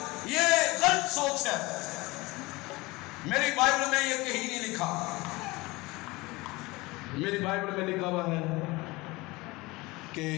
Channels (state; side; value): quieter; right; 22.4 dB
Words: یہ غلط سوچ ہے۔ میری بائبل میں یہ کہیں نہیں لکھا۔ میری بائبل میں لکھا ہوا ہے کہ